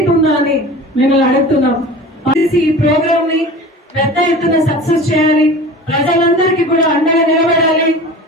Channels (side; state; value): both; normal; correlation 0.37